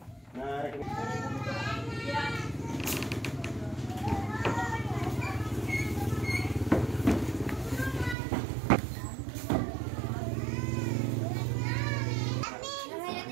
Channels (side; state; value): left; drops out; at 8.2 s